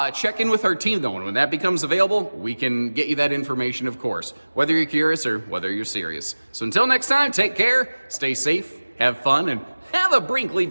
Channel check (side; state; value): both; inverted; correlation -1.00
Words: Check in with our team though, and when that becomes available, we can get you that information, of course, whether you're curious or whether you're serious. So until next time, take care, stay safe, have fun, and have a Brinkley